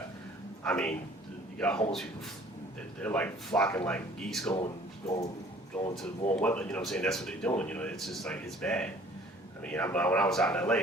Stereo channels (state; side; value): normal; both; correlation 0.53